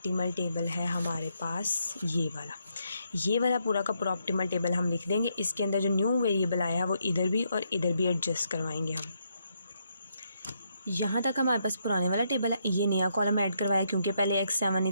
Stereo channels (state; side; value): inverted; both; correlation -0.77